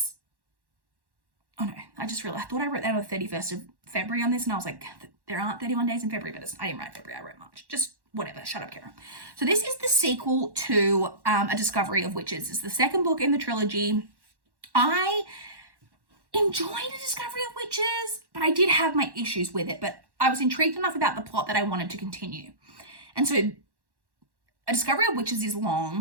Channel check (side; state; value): left; late; 1.1 ms